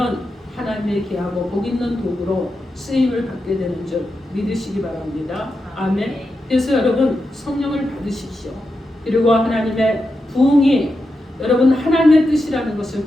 하나님의 귀하고 복 있는 도구로 쓰임을 받게 되는 줄 믿으시기 바랍니다. 아멘. 그래서 여러분 성령을 받으십시오. 그리고 하나님의 부흥이 여러분 하나님의 뜻이라는 것을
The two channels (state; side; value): normal; both; correlation 0.88